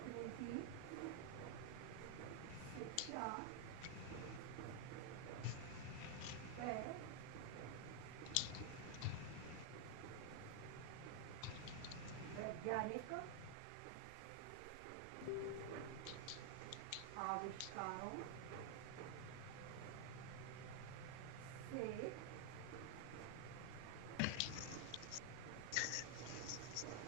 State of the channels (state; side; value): different; both; correlation 0.00